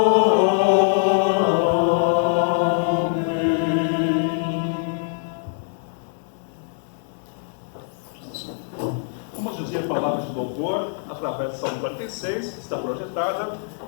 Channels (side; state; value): right; silent; 63 dB below the other